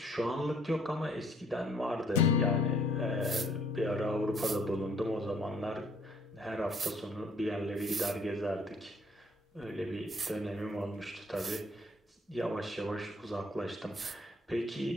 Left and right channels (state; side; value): normal; both; correlation 0.61